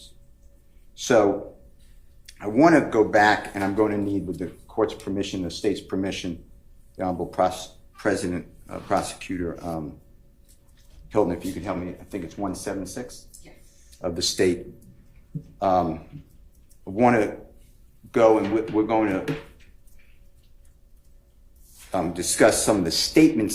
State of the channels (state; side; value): identical; both; correlation 1.00